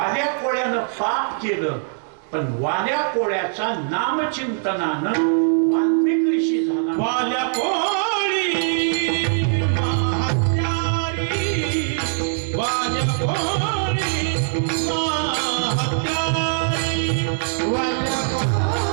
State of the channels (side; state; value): left; silent; digital silence